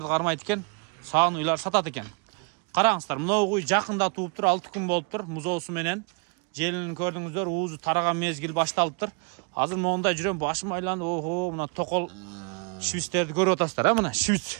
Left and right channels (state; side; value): quieter; left; 34.4 dB